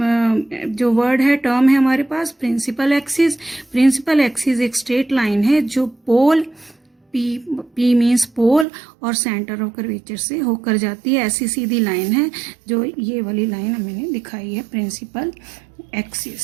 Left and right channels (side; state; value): left; drops out; at 8.7 s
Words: जो वर्ड है, टर्म है हमारे पास, प्रिंसिपल एक्सिस। प्रिंसिपल एक्सिस एक स्ट्रेट लाइन है जो पोल, पी मीन्स पोल और सेंटर ऑफ कर्वेचर से होकर जाती है। ऐसी सीधी लाइन है जो ये वाली लाइन मैंने दिखाई है, प्रिंसिपल